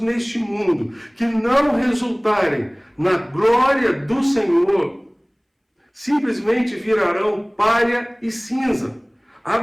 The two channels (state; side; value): identical; both; correlation 1.00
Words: mundo, que não resultarem na glória do Senhor, simplesmente virarão palha e cinza.